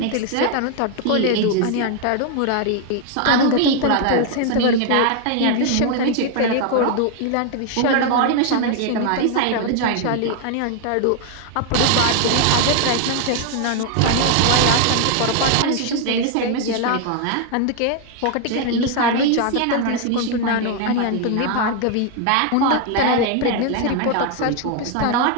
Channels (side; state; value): both; different; correlation 0.00